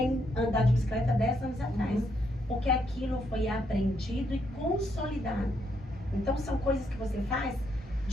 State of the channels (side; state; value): both; normal; correlation 0.76